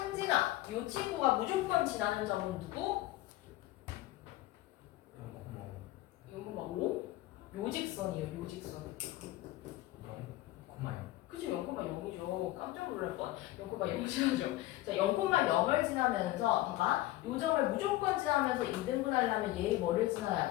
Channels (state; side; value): quieter; right; 16.7 dB